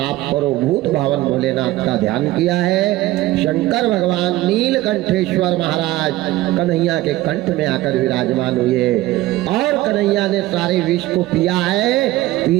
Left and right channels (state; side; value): quieter; left; 17.1 dB